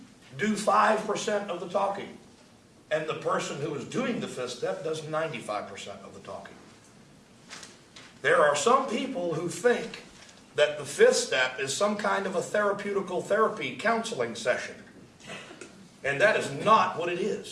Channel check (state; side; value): identical; both; correlation 1.00